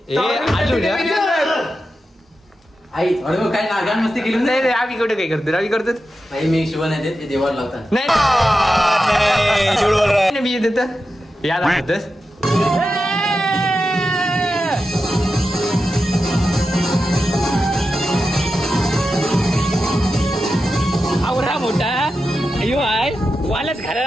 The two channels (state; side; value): normal; both; correlation 0.90